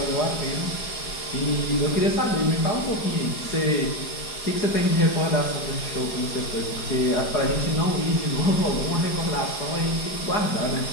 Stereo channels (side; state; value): right; late; 4.8 ms